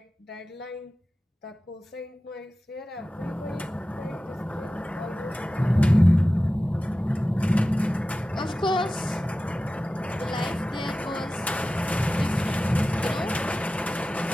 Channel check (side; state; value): both; normal; correlation 0.95